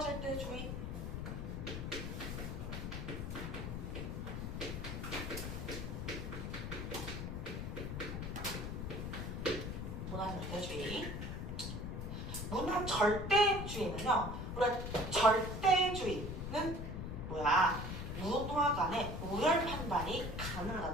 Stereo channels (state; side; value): noise; left; rumble, 4 dB below the sound